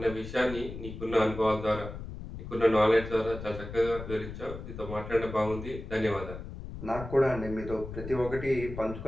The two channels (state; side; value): noise; left; rumble, 10 dB below the sound